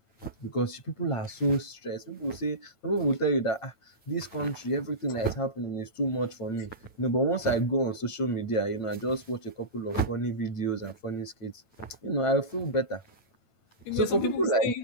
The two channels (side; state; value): right; late; 9.0 ms